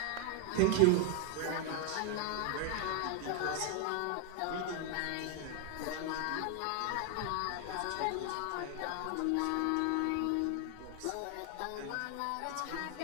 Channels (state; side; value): different; both; correlation 0.00